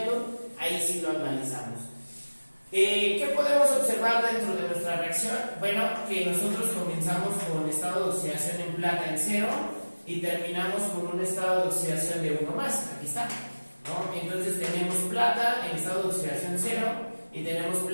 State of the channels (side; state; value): both; inverted; correlation -1.00